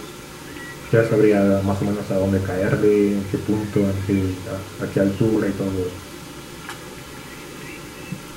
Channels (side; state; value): both; identical; correlation 1.00